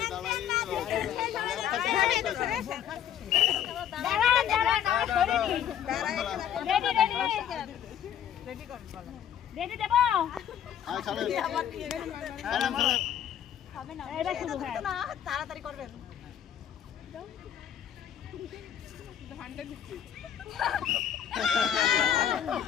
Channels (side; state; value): right; quieter; 9.7 dB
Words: রেডি দেব তাড়াতাড়ি করবেন